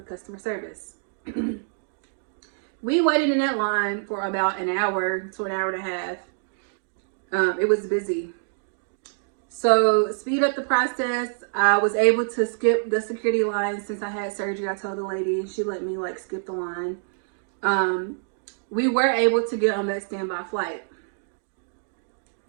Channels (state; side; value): silent; left; digital silence